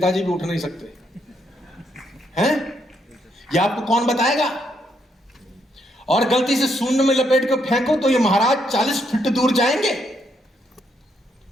भी उठ नहीं सकते हैं। ये आपको कौन बताएगा? और गलती से सूंड में लपेट कर फेंको तो ये महाराज 40 फीट दूर जाएंगे।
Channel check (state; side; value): normal; both; correlation 0.75